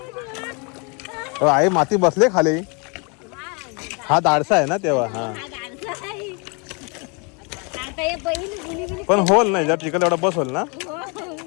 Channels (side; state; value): right; quieter; 33.0 dB